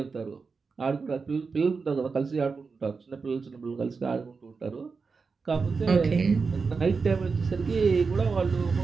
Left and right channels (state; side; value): quieter; left; 4.8 dB